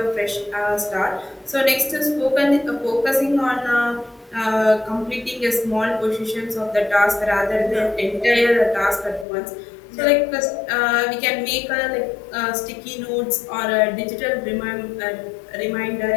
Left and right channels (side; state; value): right; drops out; at 9.2 s